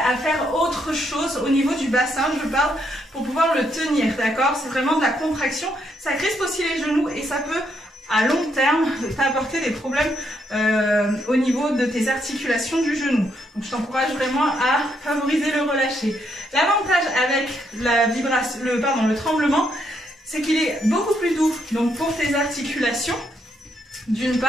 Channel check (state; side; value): normal; both; correlation 0.75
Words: à faire autre chose au niveau du bassin, je parle, pour pouvoir le tenir, d'accord? C'est vraiment de la contraction, ça crispe aussi les genoux et ça peut, à long terme, t'apporter des problèmes au niveau de tes articulations du genou. Donc je t'encourage vraiment à favoriser le relâché. L'avantage avec le tremblement, c'est qu'il est beaucoup plus doux donc pour tes articulations, d'une